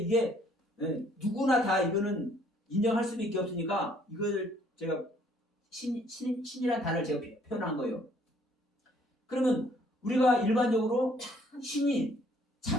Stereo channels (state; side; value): normal; both; correlation 0.62